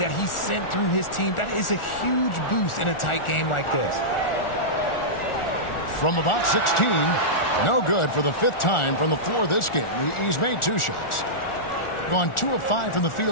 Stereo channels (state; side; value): late; right; 1.4 ms